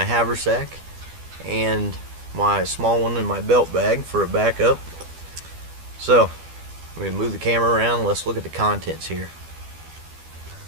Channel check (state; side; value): late; left; 12 ms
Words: haversack and my small one in my belt bag for a backup. So we move the camera around, let's look at the contents here.